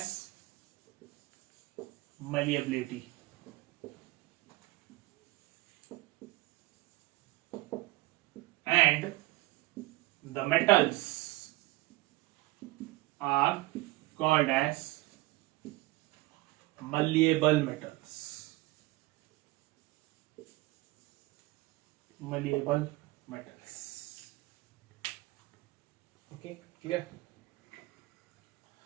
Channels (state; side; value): quieter; left; 19.9 dB